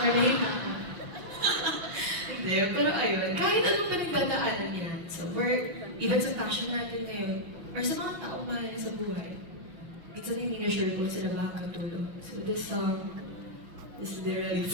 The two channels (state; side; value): late; left; 6.2 ms